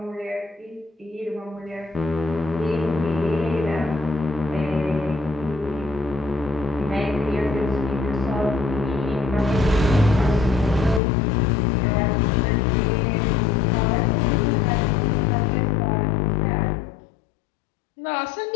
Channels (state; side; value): drops out; right; at 11.0 s